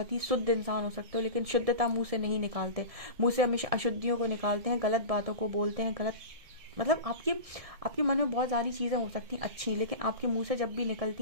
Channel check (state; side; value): late; left; 1.6 ms